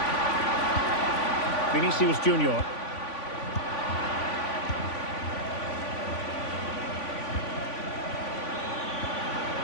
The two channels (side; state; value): right; late; 3.5 ms